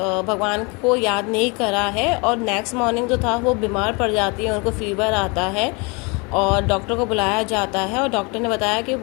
भगवान को याद नहीं करा है। और नेक्स्ट मॉर्निंग जो था वो बीमार पड़ जाती है, उनको फीवर आता है और डॉक्टर को बुलाया जाता है। और डॉक्टर ने बताया कि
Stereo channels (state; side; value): quieter; right; 29.8 dB